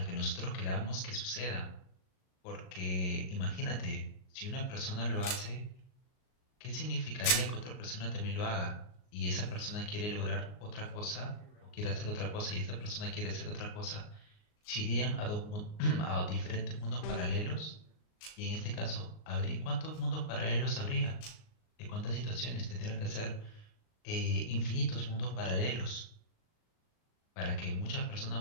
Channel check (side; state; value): right; late; 38 ms